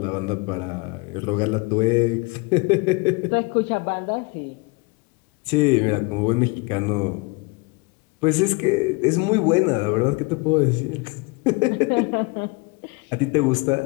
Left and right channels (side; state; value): right; quieter; 27.7 dB